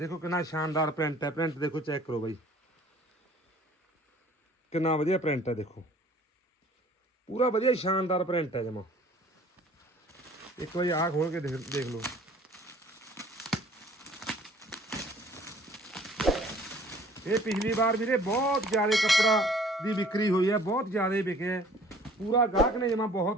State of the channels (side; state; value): both; normal; correlation 0.53